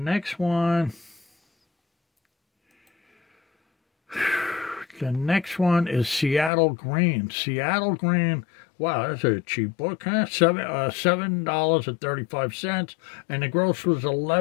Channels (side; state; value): right; drops out; at 6.5 s